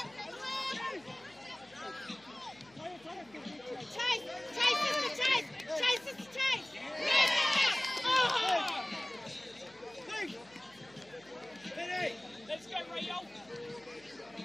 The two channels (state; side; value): noise; left; hum, 27 dB below the sound